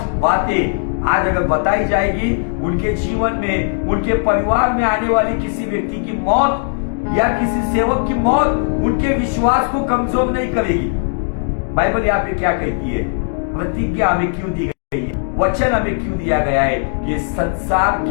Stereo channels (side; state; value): right; silent; digital silence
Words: बातें आज अगर बताई जाएगी, उनके जीवन में, उनके परिवार में आने वाली किसी व्यक्ति की मौत या किसी सेवक की मौत उनके विश्वास को कमजोर नहीं करेगी। बाइबल यहाँ पे क्या कहती है? प्रतिज्ञा हमें क्यों दी गई है, वचन हमें क्यों दिया गया है कि संसार